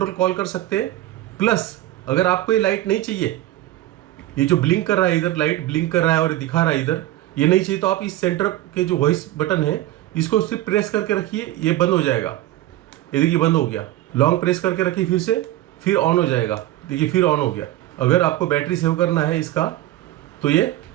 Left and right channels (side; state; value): left; quieter; 14.9 dB